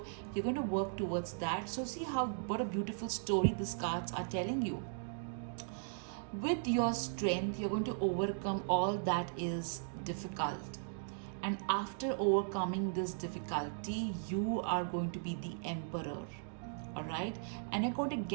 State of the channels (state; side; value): silent; left; digital silence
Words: you're going to work towards that. So see what a beautiful story these cards are telling you. With your strength, you're going to overcome all that is difficult, and after overcoming this difficulty, you are going to be the emperor. All right, and you're going to